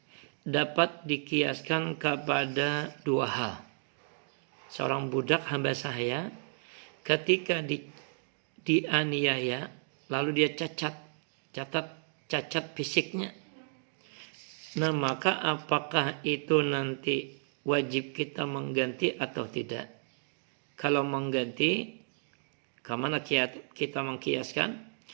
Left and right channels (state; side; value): silent; left; digital silence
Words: dapat dikiaskan kepada dua hal. Seorang budak hamba saya ketika dianiaya, lalu dia cacat fisiknya. Nah, maka apakah itu nanti wajib kita mengganti atau tidak? Kalau mengganti, kemana kita mengkiaskan?